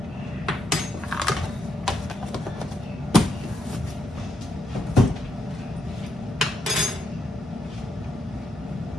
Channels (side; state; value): both; normal; correlation 0.79